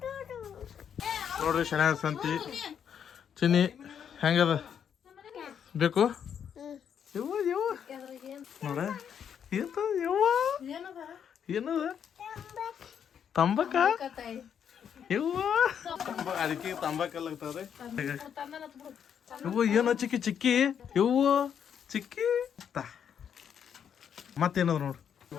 ನೋಡ್ರಿ. ಶನಿವಾರ ಸಂತಿ ಚಿನ್ನಿ ಹೆಂಗದ ಬೇಕು ಯವ್ವ ಯವ್ವ ನೋಡ ಯವ್ವ ಏನದ ತಂಬಾಕ ಯವ್ವ ಅದಕ್ಕೆ ತಂಬಾಕಲ್ಲಾಗ್ತವ್ರಿ. ಯವ್ವ ಏನೋ ಚಿಕ್ಕಿ ಚಿಕ್ಕಿ ಯವ್ವ ಚಿಕ್ಕಿ ಮತ್ತೇನದ ನೋಡ್ರಿ.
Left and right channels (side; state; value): right; quieter; 8.2 dB